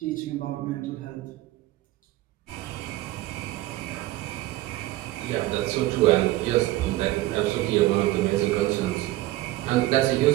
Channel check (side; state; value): left; quieter; 17.0 dB